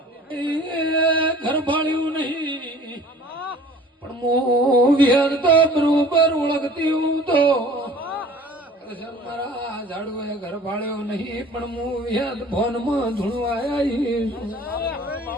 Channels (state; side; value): normal; both; correlation 0.47